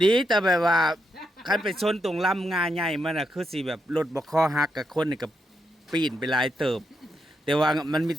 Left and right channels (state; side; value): normal; both; correlation 0.82